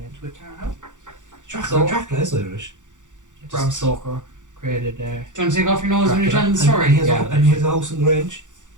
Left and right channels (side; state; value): left; late; 0.86 ms